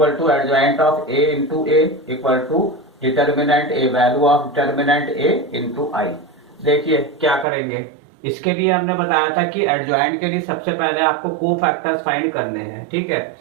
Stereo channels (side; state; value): left; drops out; at 7.5 s